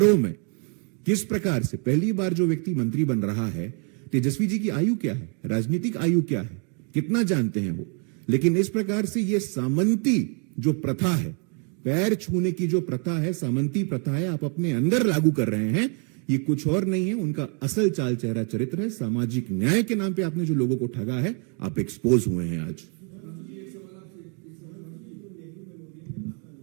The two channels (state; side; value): quieter; left; 38.9 dB